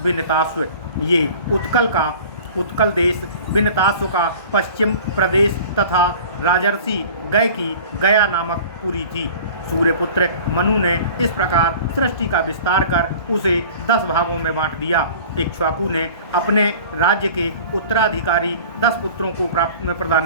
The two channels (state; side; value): inverted; both; correlation -0.43